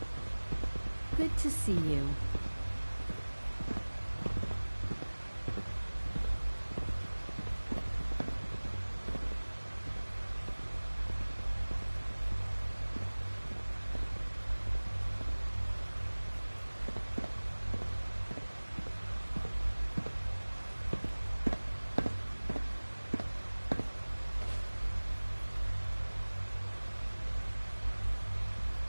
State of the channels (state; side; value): inverted; both; correlation -1.00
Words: Good to see you.